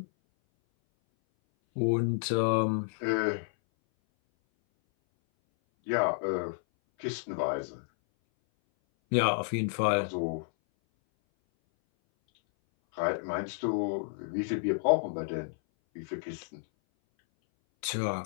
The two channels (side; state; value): right; silent; 57 dB below the other